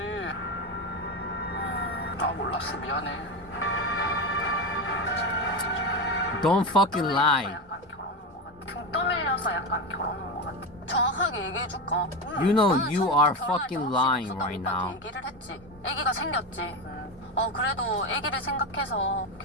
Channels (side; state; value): both; normal; correlation 0.17